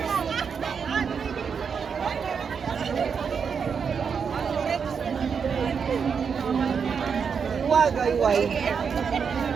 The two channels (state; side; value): quieter; left; 6.3 dB